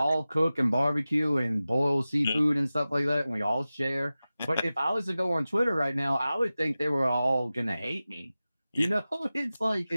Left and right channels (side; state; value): both; inverted; correlation -0.96